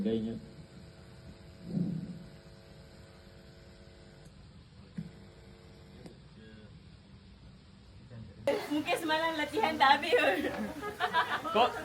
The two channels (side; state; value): both; identical; correlation 1.00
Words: Mungkin semalam latihan tak habis pun. Kok